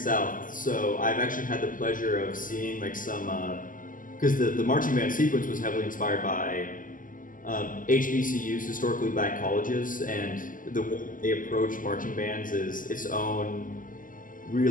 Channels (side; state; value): right; late; 0.39 ms